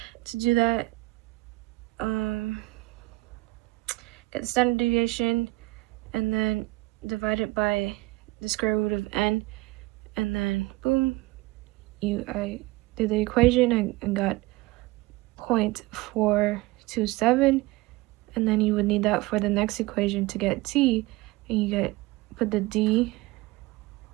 To do that, get the standard deviation and then divide it by the square root of n, and then boom, I did the equation and got 0.427, and then you would need that for the next equation to get t, and you put the d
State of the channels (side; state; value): left; quieter; 20.7 dB